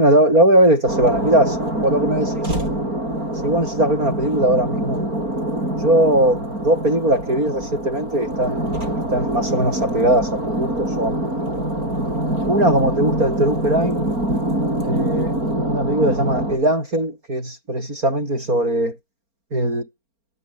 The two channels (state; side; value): late; left; 4.4 ms